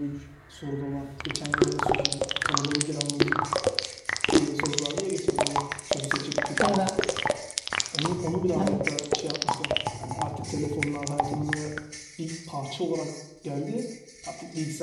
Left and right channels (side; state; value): both; identical; correlation 1.00